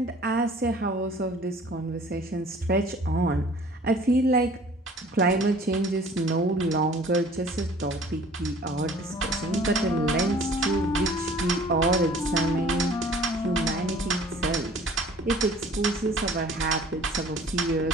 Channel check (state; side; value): normal; both; correlation 0.50